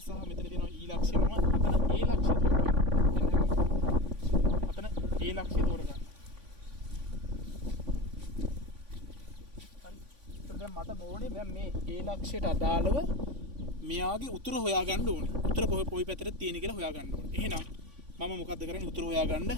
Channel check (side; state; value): left; late; 3.5 ms